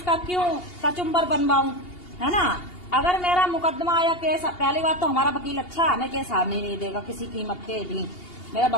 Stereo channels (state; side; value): late; right; 2.8 ms